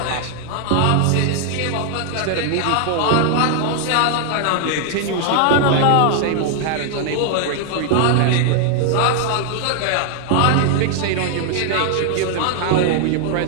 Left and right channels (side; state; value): both; different; correlation 0.00